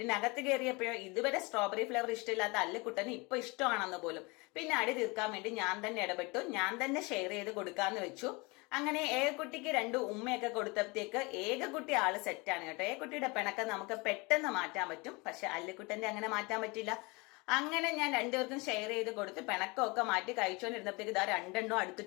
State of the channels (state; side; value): quieter; right; 26.8 dB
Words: കയറിയപ്പോഴോ ഇതുവരെ സ്ട്രോബെറി ഫ്ലേവർ ഇഷ്ടമില്ലാത്ത അല്ലുക്കുട്ടന് ഇപ്പൊ ഇഷ്ടമാണെന്ന് പോലും. പിന്നെ അടി തീർക്കാൻ വേണ്ടി ഞാൻ തന്നെ ഇടപെട്ടു. ഞാൻ തന്നെ ഷെയർ ചെയ്ത് കൊടുക്കാന്ന് വെച്ചു. അങ്ങനെ ഏകക്കുട്ടിക്ക് രണ്ട് ഉമ്മയൊക്കെ കൊടുത്തപ്പോഴത്തേക്ക് ഏകക്കുട്ടി ആള് സെറ്റാണ് കേട്ടോ. ഏകക്കുട്ടിയുടെ പിണക്കം നമുക്ക് പെട്ടെന്ന് മാറ്റാൻ പറ്റും. പക്ഷെ അല്ലുക്കുട്ടന്റെ അങ്ങനെ മാറ്റാൻ പറ്റില്ല. അങ്ങനെ ഞാൻ രണ്ടുപേർക്കും ഷെയർ ചെയ്ത് കൊടുത്ത് പിണക്കമൊക്കെ മാറ്റി കഴിച്ചുകൊണ്ടിരുന്നപ്പോഴത്തേക്ക് ഇതാ രണ്ടെണ്ണവും